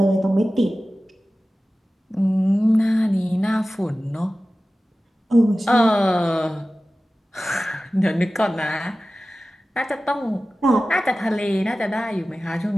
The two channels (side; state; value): both; normal; correlation 0.96